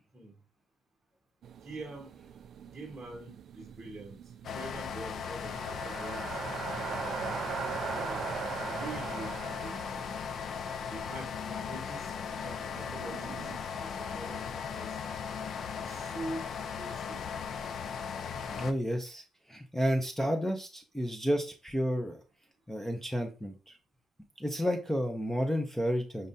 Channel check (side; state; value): both; normal; correlation 0.83